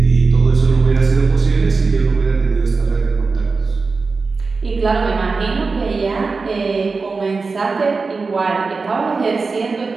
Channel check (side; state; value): left; quieter; 4.3 dB